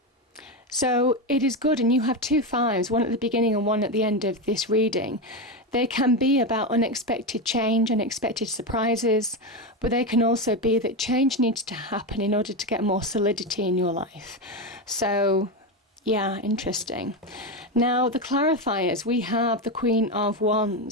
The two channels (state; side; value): normal; both; correlation 0.13